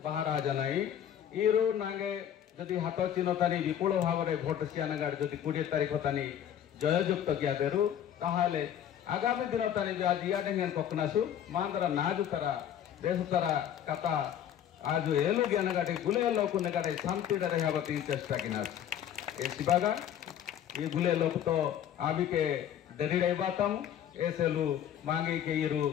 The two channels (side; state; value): right; quieter; 10.0 dB